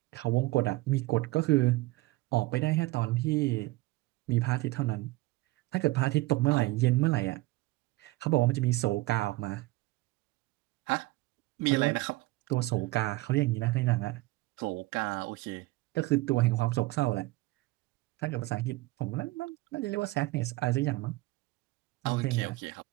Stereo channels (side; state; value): left; quieter; 20.2 dB